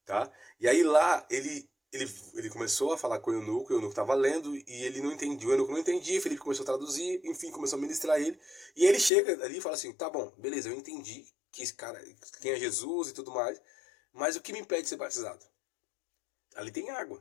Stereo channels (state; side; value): drops out; right; at 9.1 s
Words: tá? E aí lá ele começou a falar com o eunuco estava lendo e ele não entendia, o eunuco não entendia, Felipe começou a traduzir, enfim, começou a ministrar ele. E ele chega ali e fala assim, tá bom, beleza, eu entendi que esse cara, quem é Jesus e tudo mais, mas o que me impede de ser batizado? Ali tem